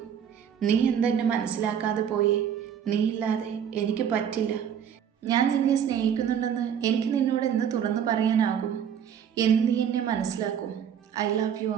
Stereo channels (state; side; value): quieter; left; 8.6 dB